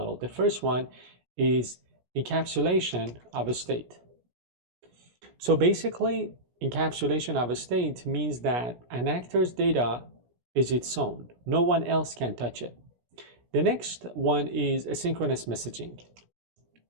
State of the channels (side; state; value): left; late; 17 ms